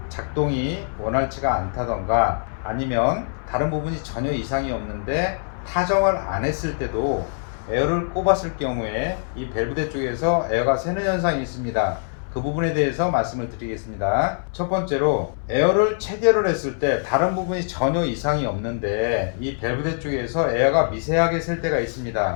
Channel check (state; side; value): silent; right; 61 dB below the other